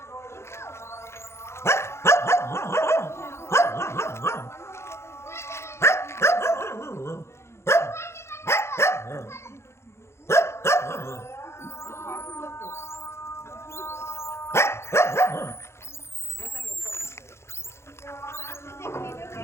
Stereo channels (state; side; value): late; right; 0.13 ms